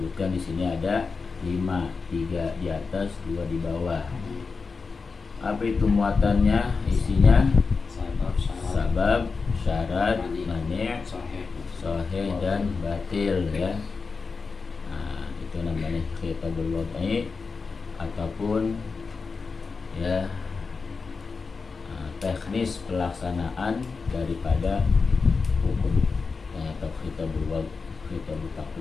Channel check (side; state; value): right; quieter; 4.7 dB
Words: di sini ada 5, 3 di atas, 2 di bawah. Apa itu muatannya? Isinya sabab, syarat, mani', sahih dan batil ya. Nah, itu namanya khitabul wad'i ataupun ya teknis pelaksanaan daripada hukum atau khitabul wad'i, khitabul